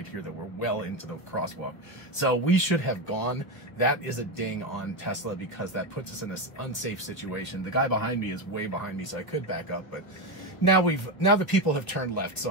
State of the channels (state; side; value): late; right; 1.2 ms